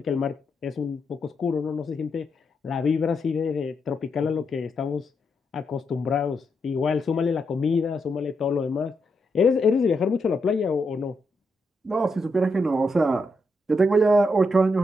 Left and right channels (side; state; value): both; normal; correlation 0.82